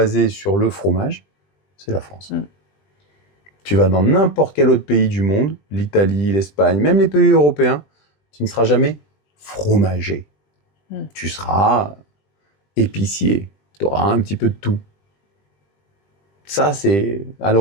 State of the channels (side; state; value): right; late; 20 ms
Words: sur le fromage, c'est la France. Tu vas dans n'importe quel autre pays du monde, l'Italie, l'Espagne, même les pays européens, tu ne seras jamais fromager. Tu seras épicier. Tu auras un petit peu de tout. Ça, c'est à